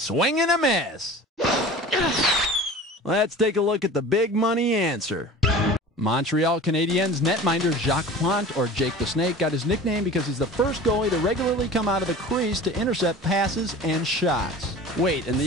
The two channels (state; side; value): normal; both; correlation 0.39